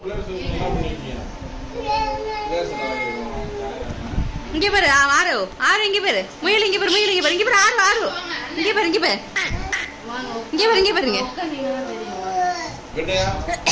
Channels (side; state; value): both; identical; correlation 1.00